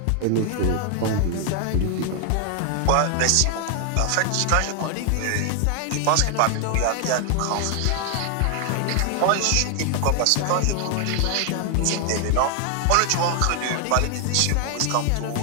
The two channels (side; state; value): both; different; correlation 0.00